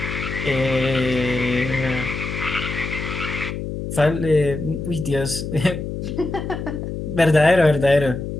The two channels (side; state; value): left; noise; hum, 6 dB below the sound